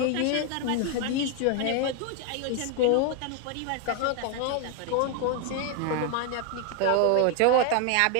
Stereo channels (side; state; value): both; different; correlation 0.01